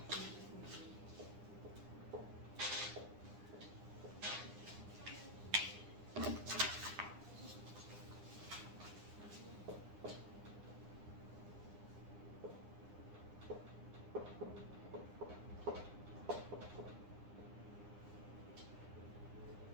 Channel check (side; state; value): left; late; 9.8 ms